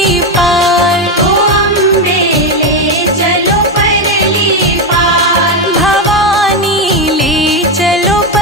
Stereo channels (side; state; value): both; normal; correlation 0.10